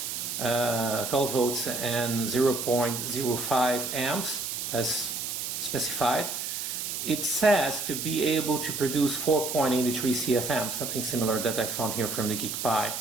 and 0.05 amps as specified, it says to be able to produce 4.83 CFM, something similar that I found here from the GeeekPi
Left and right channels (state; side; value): noise; right; hiss, 4 dB below the sound